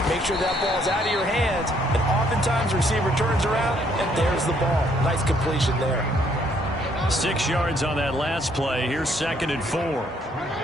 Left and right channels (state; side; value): normal; both; correlation 0.67